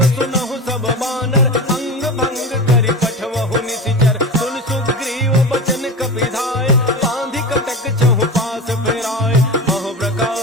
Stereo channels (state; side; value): normal; both; correlation 0.27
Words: सुनहु सब बानर अंग भंग करि पठवहु निशिचर सुन सुग्रीव बचन कपिधाय बांधि कटक चहु पास फिराए बहु